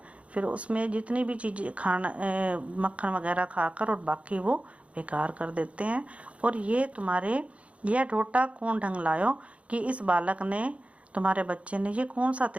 फिर उसमें जितनी भी चीज़ें मक्खन वगैरह खाकर और बाकी वो बेकार कर देते हैं। और यह ढोटा कौन ढंग लायो, कि इस बालक ने, तुम्हारे बच्चे ने ये कौन सा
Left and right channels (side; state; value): left; late; 0.063 ms